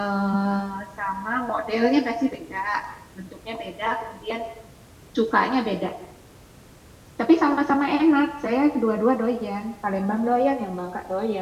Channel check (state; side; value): identical; both; correlation 1.00